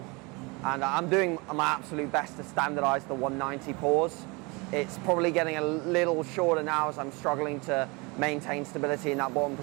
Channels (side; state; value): left; quieter; 27.6 dB